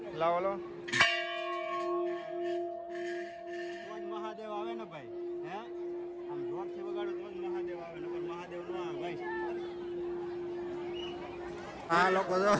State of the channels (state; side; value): identical; both; correlation 1.00